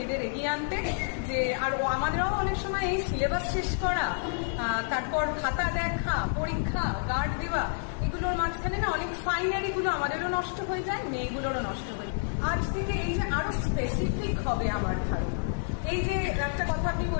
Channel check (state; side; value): silent; right; digital silence